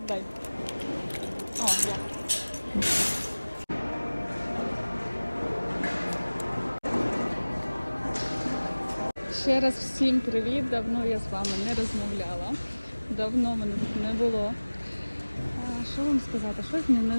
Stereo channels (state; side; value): inverted; both; correlation -1.00